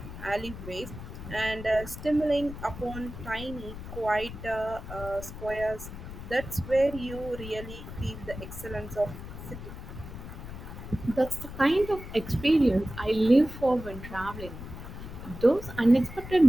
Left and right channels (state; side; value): noise; left; rumble, 11 dB below the sound